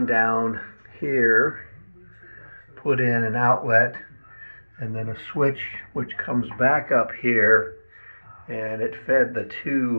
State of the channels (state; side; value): inverted; both; correlation -1.00